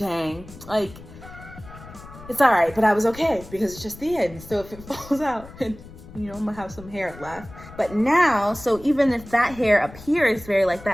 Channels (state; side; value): noise; left; rumble, 17 dB below the sound